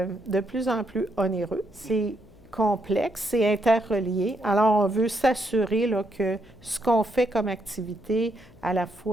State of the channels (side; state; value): left; noise; hum, 25 dB below the sound